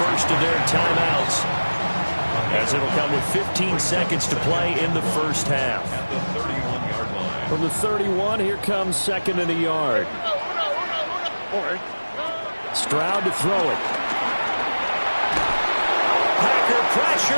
first of their timeouts, as it'll come with 15 seconds to play in the first half. From the 31, here comes second and a yard. Stroud to throw it. Packer pressure,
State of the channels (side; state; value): both; inverted; correlation -1.00